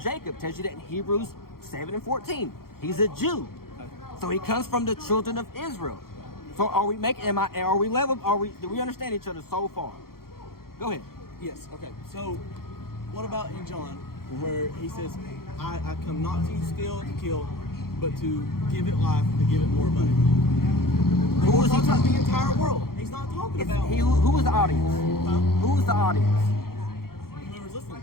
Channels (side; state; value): right; late; 0.93 ms